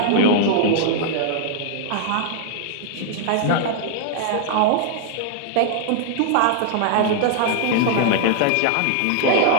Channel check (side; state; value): both; different; correlation 0.00